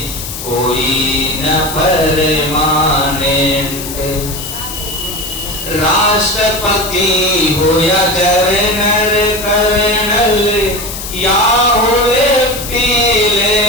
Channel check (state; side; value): noise; left; hiss, 9 dB below the sound